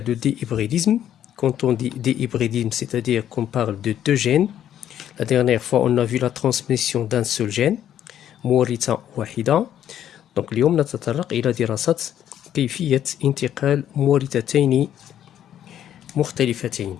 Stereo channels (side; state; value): right; quieter; 10.7 dB